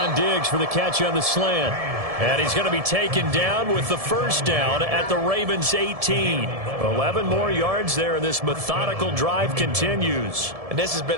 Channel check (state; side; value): late; left; 1.7 ms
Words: Diggs for the catch on the slant. And he's going to be taken down with the first down at the Ravens 18. 11 more yards there, and this methodical drive continues. And this has been